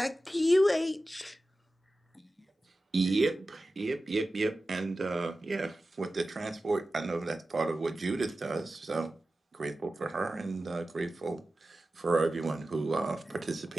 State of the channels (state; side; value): normal; both; correlation 0.94